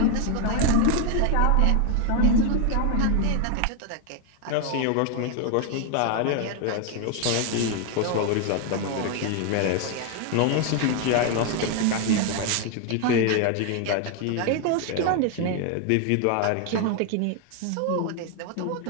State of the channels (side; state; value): both; different; correlation 0.01